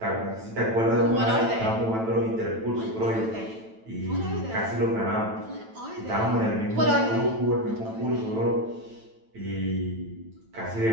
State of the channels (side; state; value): left; late; 9.1 ms